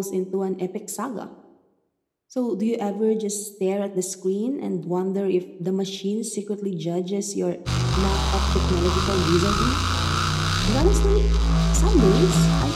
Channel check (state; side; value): identical; both; correlation 1.00